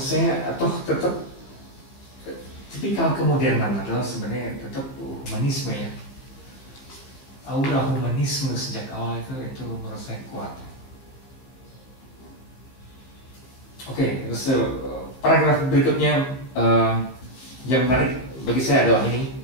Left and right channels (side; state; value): right; late; 15 ms